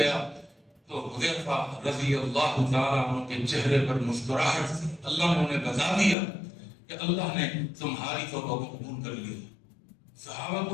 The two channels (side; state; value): right; drops out; at 6.2 s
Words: تو حذیفہ رضی اللہ تعالیٰ عنہ کے چہرے پر مسکراہٹ تھی. اللہ نے انہیں بتا دیا کہ اللہ نے تمہاری توبہ کو قبول کر لیا. صحابہ کو